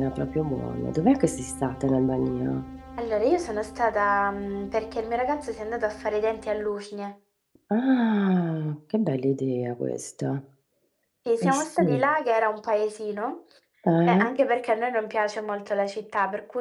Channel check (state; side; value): identical; both; correlation 1.00